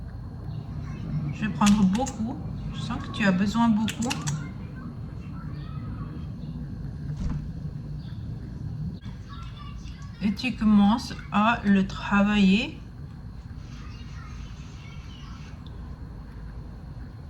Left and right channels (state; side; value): identical; both; correlation 1.00